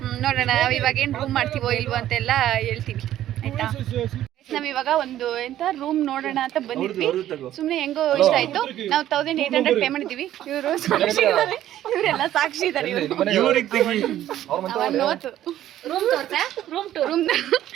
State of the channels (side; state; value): left; quieter; 12.6 dB